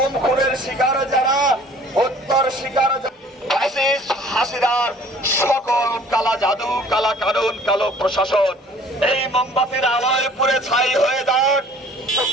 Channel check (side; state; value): both; normal; correlation 0.52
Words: খুনের শিকার যারা, হত্যার শিকার হাসিনার সকল কালা জাদু, কালা কানুন, কালো প্রশাসন এই মোমবাতির আলোয় পুড়ে ছাই হয়ে যাক।